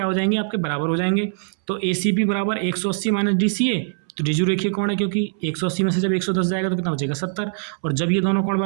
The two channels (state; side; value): silent; left; 64 dB below the other